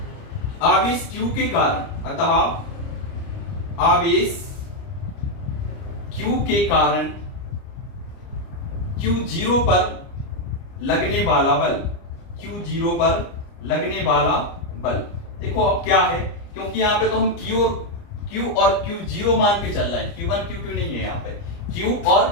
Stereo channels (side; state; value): right; late; 29 ms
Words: आवेश Q के कारण Q0 पर लगने वाला बल, देखो अब क्या है, क्योंकि यहां पे तो हम Q और Q0 मान के चल रहे हैं, Q1 Q2 नहीं है। यहाँ पे Q